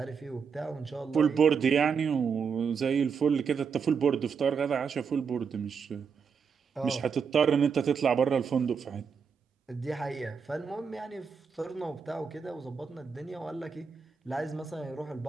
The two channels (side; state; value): left; quieter; 6.1 dB